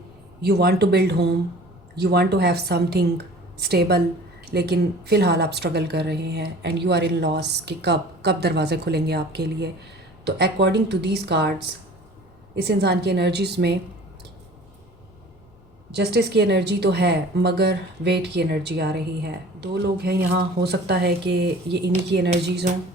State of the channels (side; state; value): both; normal; correlation 0.45